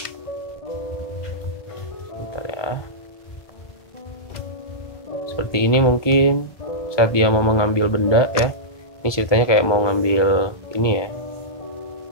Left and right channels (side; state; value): right; late; 1.2 ms